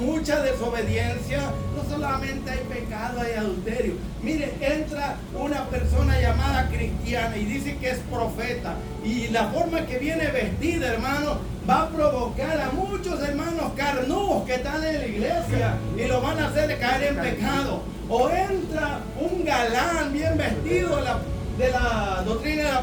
desobediencia. No solamente hay pecado, hay adulterio. Mire, entra una persona llamada cristiana y dice que es profeta. Y la forma que viene vestida, hermano, va a provocar a muchos hermanos carnudos que están en la iglesia y lo van a hacer caer en pecado. O entra un galán bien vestido de la doctrina de la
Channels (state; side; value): identical; both; correlation 1.00